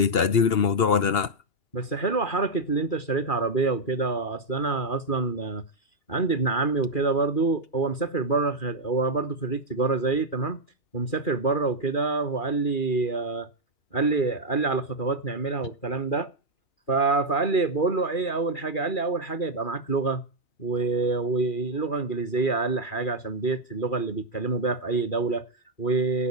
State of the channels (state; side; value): late; right; 2.8 ms